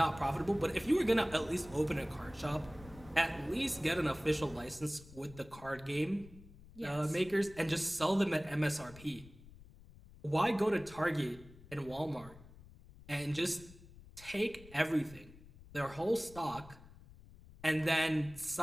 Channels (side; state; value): left; noise; rumble, 20 dB below the sound